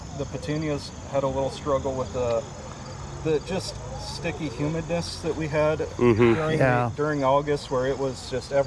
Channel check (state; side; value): identical; both; correlation 1.00